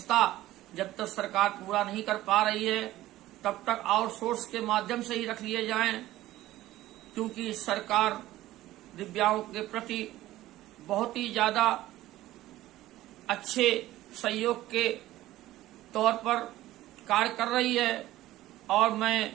जब तक सरकार पूरा नहीं कर पा रही है तब तक आउटसोर्स के माध्यम से ही रख लिए जाएं, क्योंकि सरकार दिव्यांगों के प्रति बहुत ही ज्यादा अच्छे सहयोग के तौर पर कार्य कर रही है। और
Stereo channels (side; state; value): left; quieter; 15.5 dB